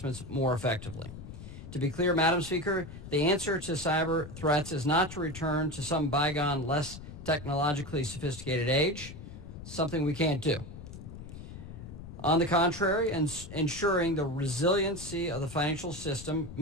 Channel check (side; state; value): left; noise; rumble, 12 dB below the sound